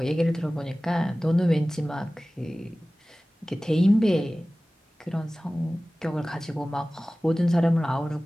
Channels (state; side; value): normal; both; correlation 0.97